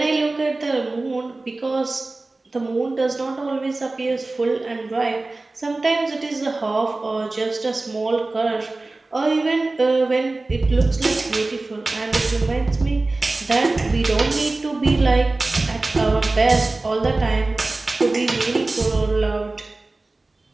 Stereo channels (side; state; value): left; quieter; 3.2 dB